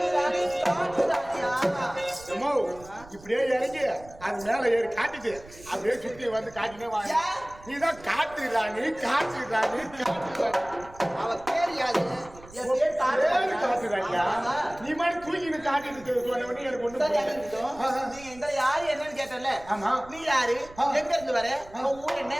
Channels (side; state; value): right; noise; rumble, 21 dB below the sound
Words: ராணி காட்டு ராணியா அம்மா, இப்படியே இறங்கி அது மேல ஏறி காட்டிட்டு அப்படியே சுத்தி வந்து காட்டினே வாங்க. ஏன்? நீதான் காட்டு ராணி காட்டு ராணி காட்டு ராணி. அவ பேர் யாரு? என் பேர் காட்டு ஏறு காட்டு ராணியா? ஆமா. நீ மாதிரி தூக்கிட்டு காட்டிட்டு சொன்ன உடனே எனக்கு ஒண்ணு சரி, புரியல. இருக்கட்டும். நீங்க இந்த யாரு என்னன்னு கேட்டல ஆமா. நீ யாரு ஆ. எங்க இருந்து வர உன் ஊர் என்ன